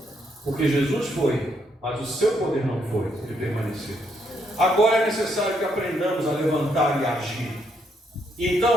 Porque Jesus foi, mas o seu poder não foi, ele permaneceu. Agora é necessário que aprendamos a levantar e agir.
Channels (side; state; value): both; normal; correlation 0.75